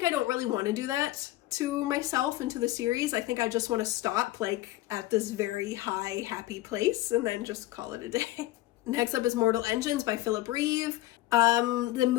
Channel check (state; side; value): quieter; right; 16.7 dB